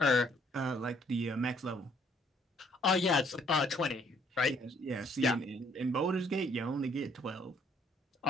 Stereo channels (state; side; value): normal; both; correlation 0.65